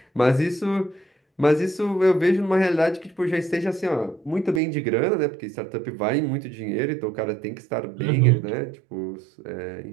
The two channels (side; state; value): left; drops out; at 4.6 s